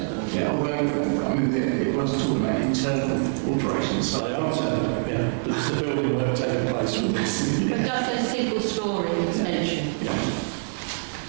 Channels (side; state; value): left; silent; digital silence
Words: Yeah, although, I mean, it wasn't talking about internal alterations. So they are saying, yeah, but it's the building work taking place with this. But just a single story extension. Yeah.